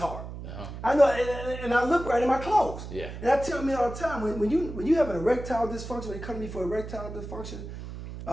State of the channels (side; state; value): right; noise; hum, 10 dB below the sound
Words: I know, and I look right in my clothes. Yeah. And I tell men all the time, when you have an erectile dysfunction, when they come to me for erectile dysfunction,